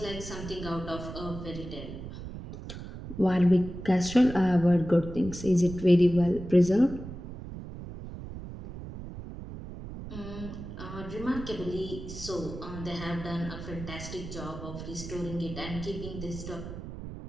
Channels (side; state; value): right; noise; rumble, 10 dB below the sound